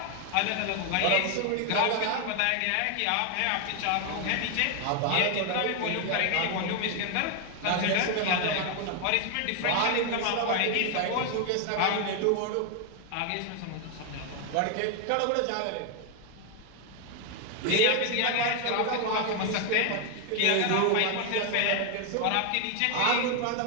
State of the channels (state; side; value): different; both; correlation 0.01